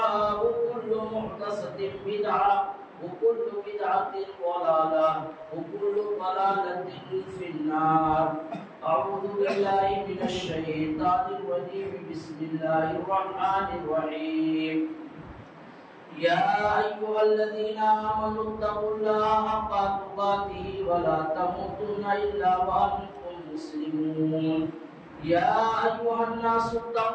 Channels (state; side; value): identical; both; correlation 1.00